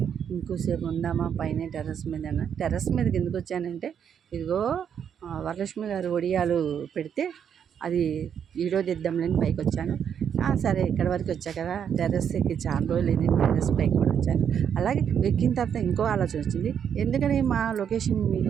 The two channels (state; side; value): quieter; left; 8.2 dB